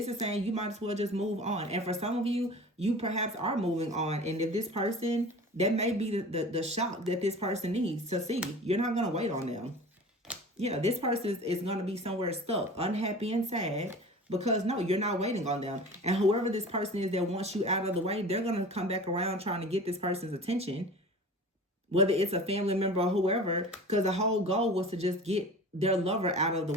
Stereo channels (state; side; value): normal; both; correlation 0.38